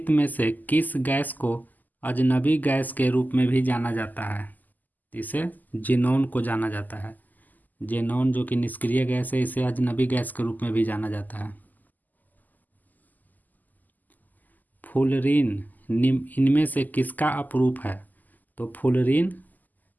में से किस गैस को अजनबी गैस के रूप में भी जाना जाता है? इसे जेनॉन को जाना जाता है। जेनॉन जो कि निष्क्रिय गैस है, इसे अजनबी गैस के रूप में भी जाना जाता है। फ्लोरीन इनमें से किसका अपरूप है? तो फ्लोरीन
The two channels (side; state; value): right; late; 0.083 ms